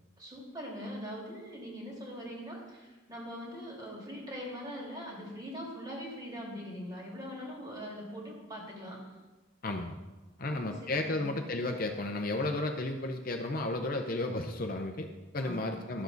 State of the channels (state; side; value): normal; both; correlation 0.42